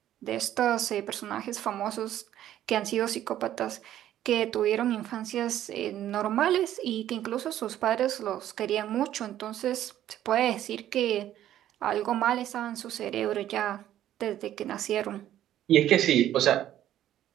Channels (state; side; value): quieter; left; 12.1 dB